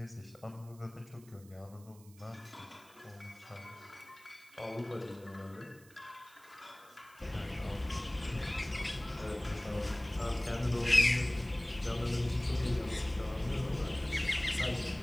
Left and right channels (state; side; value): noise; right; hiss, 25 dB below the sound